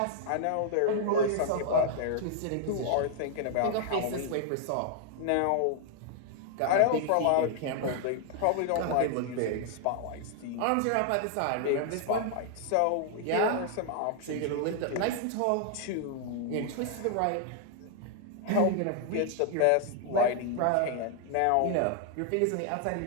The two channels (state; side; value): different; both; correlation 0.00